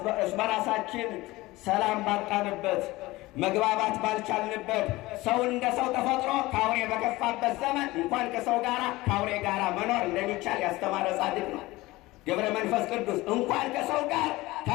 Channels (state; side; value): quieter; right; 19.7 dB